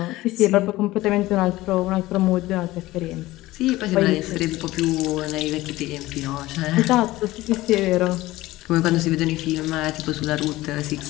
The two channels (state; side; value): quieter; right; 17.8 dB